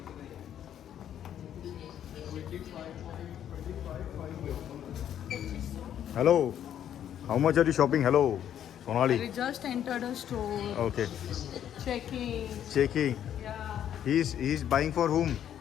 Hello, how much are you shopping? Hello Sonali. We just entered a store. Okay. Checking. Checking. Yeah. He is buying for whom?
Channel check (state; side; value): quieter; right; 10.1 dB